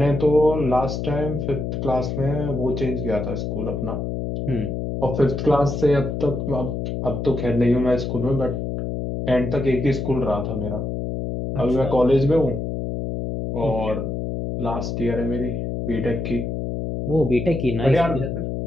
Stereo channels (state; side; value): noise; left; hum, 3 dB below the sound